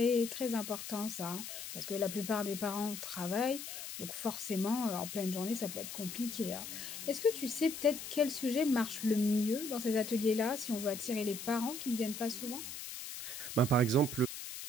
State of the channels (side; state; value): left; noise; hiss, 8 dB below the sound